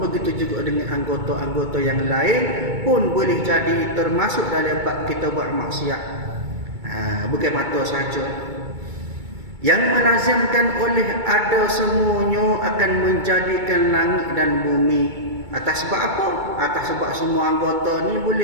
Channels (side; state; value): left; late; 2.2 ms